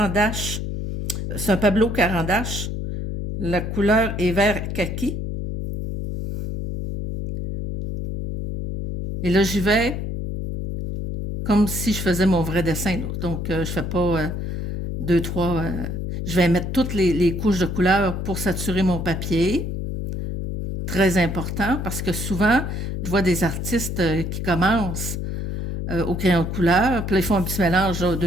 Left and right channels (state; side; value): noise; left; hum, 4 dB below the sound